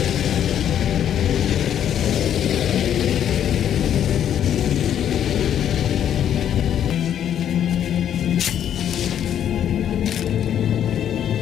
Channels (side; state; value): right; quieter; 9.9 dB